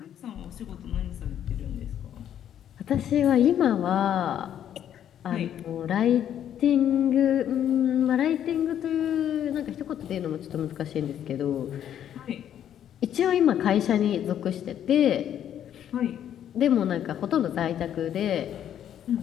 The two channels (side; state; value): right; quieter; 10.1 dB